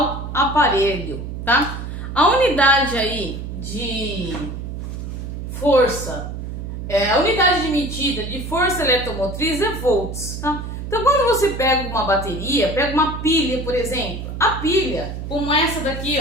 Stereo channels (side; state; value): right; noise; hum, 7 dB below the sound